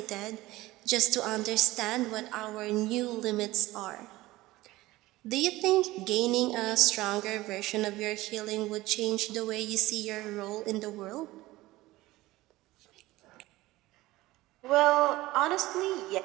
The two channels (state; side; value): quieter; left; 18.3 dB